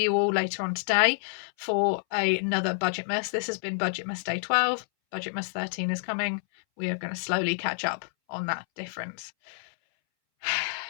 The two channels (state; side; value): silent; right; 59 dB below the other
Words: you all later on today for another Budgetmas. This has been Budgetmas Day 12. Budgetmas 13 is coming. We are going to slowly catch up on that difference.